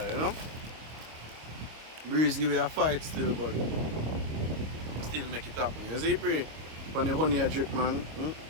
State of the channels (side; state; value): left; late; 25 ms